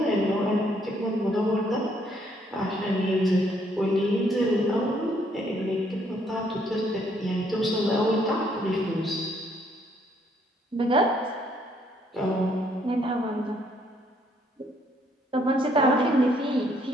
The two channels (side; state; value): both; normal; correlation 0.68